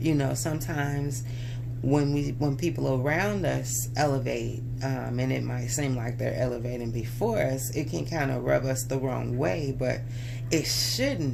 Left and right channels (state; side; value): identical; both; correlation 1.00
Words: You know, sometimes when people around us elevate, and it might seem like they're elevating before us, it can kind of rub us the wrong way, but it